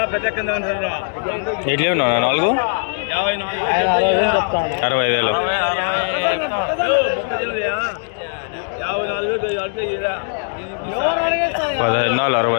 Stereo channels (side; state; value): right; silent; digital silence